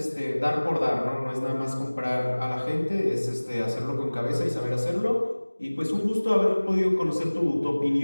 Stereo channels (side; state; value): both; inverted; correlation -1.00